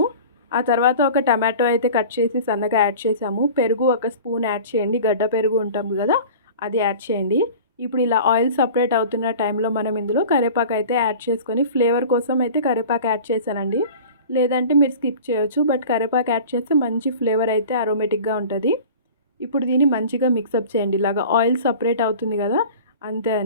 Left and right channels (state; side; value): inverted; both; correlation -0.40